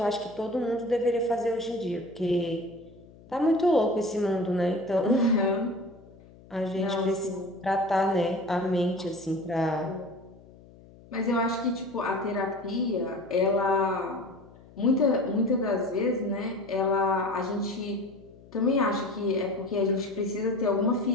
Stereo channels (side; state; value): left; noise; hum, 23 dB below the sound